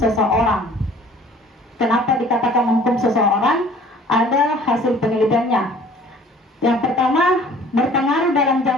Kenapa dikatakan menghukum seseorang? Ada hasil penelitiannya. Yang pertama, berpengaruh dalam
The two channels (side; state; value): both; normal; correlation 0.51